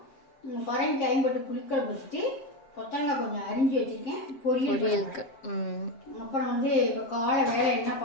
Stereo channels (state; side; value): late; right; 7.4 ms